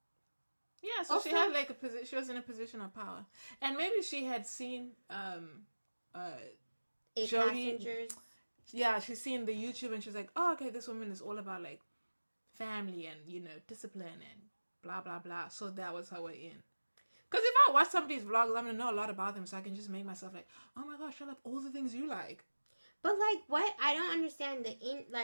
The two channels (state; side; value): inverted; both; correlation -1.00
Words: yeah, so also, she had like she was in a position of power. And maybe she had seen Jodi. Passengers. Yeah, she's seen the YouTube and she's like, oh, okay, this woman is all about like family and, you know, discipline and blah, blah, blah. So that was her way in. Because if I watch somebody's vlogs, I'm going to know a lot about them, so I can just make myself like, oh my gosh, I love all the things you like. But like, what? I don't understand